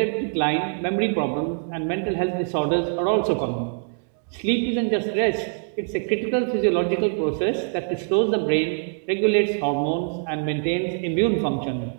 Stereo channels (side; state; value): left; silent; 62 dB below the other